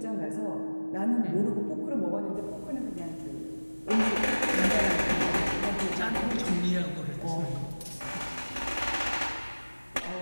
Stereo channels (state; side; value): inverted; both; correlation -1.00